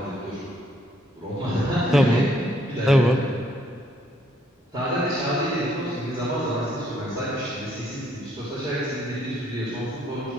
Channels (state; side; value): normal; both; correlation 0.68